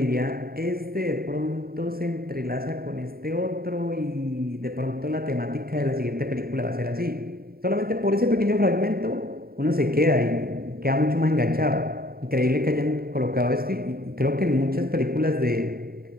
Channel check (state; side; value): late; left; 0.44 ms